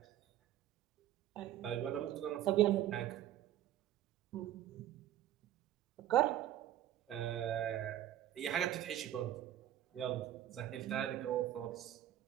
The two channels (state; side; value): quieter; left; 12.2 dB